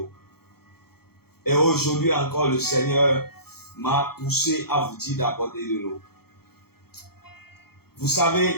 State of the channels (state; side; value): late; right; 0.95 ms